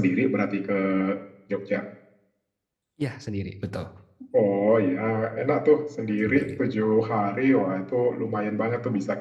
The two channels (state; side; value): identical; both; correlation 1.00